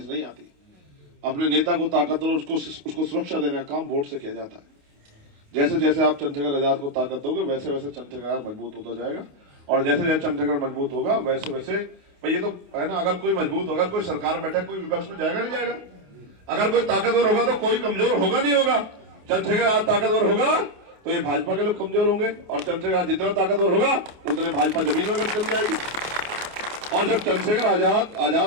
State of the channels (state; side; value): late; left; 28 ms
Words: नहीं आती। अपने नेता को ताकतवर, उसको सुरक्षा देने का काम वोट से किया जाता है। जैसे जैसे आप चंद्रशेखर आजाद को ताकत दोगे, वैसे वैसे चंद्रशेखर आजाद मजबूत होता जाएगा। और जैसे जैसे चंद्रशेखर मजबूत होगा, वैसे वैसे भाई ये तो है ना, अगर कोई मजबूत होगा, कोई सरकार बैठा, कोई विपक्ष में जाएगा नहीं जाएगा। अगर कोई ताकतवर होगा तो कोई कमजोर होगा नहीं होगा। चंद्रशेखर आजाद ताकतवर होगा तो ये भाजपा के लोग कमजोर होंगे, और चंद्रशेखर आजाद जितना ताकतवर होगा उतने भाजपा जमीन में चल जाएगी। और जब चंद्रशेखर आजाद,